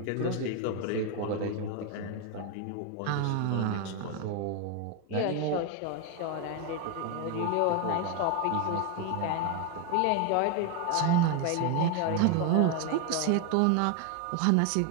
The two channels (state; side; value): different; both; correlation 0.01